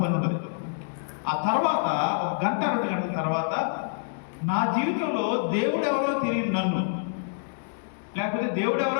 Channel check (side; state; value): right; silent; digital silence